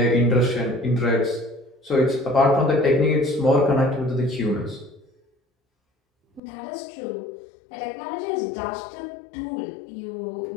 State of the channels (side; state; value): right; drops out; at 6.4 s